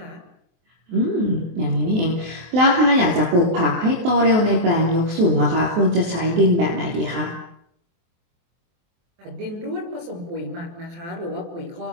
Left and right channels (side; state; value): left; late; 23 ms